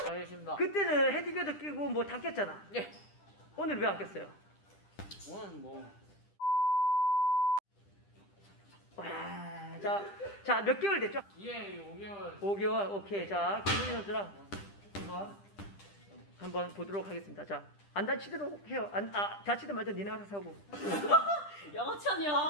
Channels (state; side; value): late; right; 10 ms